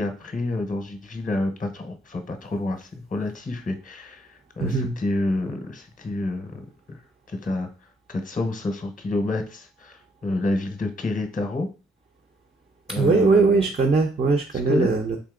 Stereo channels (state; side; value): normal; both; correlation 0.70